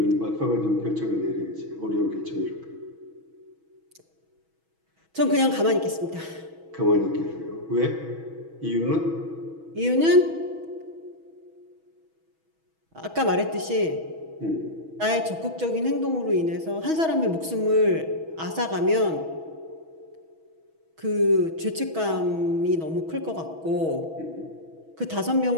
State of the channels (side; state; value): left; late; 6.2 ms